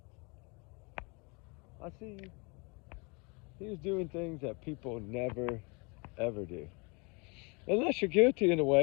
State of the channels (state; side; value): quieter; right; 30.4 dB